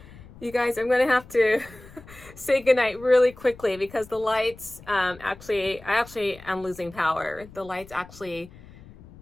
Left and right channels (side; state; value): left; noise; rumble, 20 dB below the sound